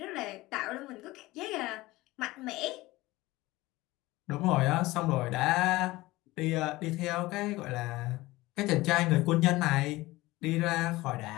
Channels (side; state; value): right; quieter; 19.4 dB